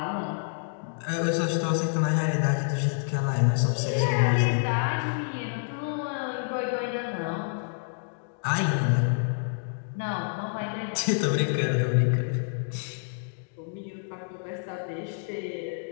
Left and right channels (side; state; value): right; silent; digital silence